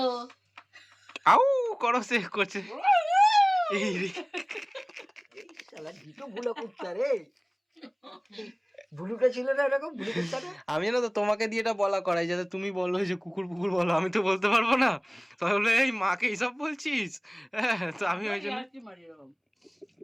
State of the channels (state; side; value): identical; both; correlation 1.00